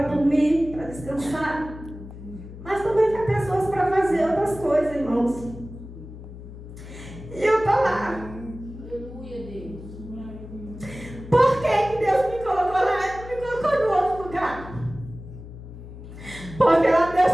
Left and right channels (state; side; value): noise; left; hum, 14 dB below the sound